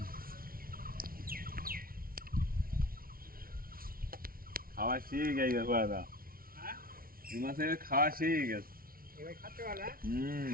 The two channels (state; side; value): late; left; 0.43 ms